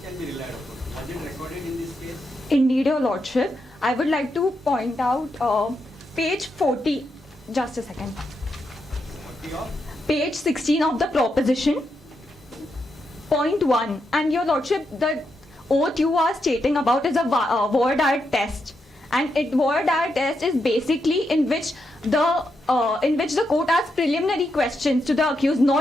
can be relied upon. Was it recorded in this case? Indeed, Your Lordship. I would like to point out page 40. Just a second. Page 16 of the proposition. Point 1. And Your Lordship, the oath you are stating about is a voir dire test. And voir dire test is basically in which the court asks preliminary questions to the accused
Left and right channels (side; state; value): both; normal; correlation 0.83